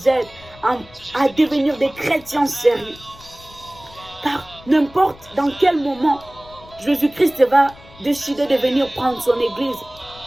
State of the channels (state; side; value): noise; left; rumble, 22 dB below the sound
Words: aide à devenir des chrétiens sérieux. Car n'importe dans quel moment Jésus-Christ va décider de venir prendre son église.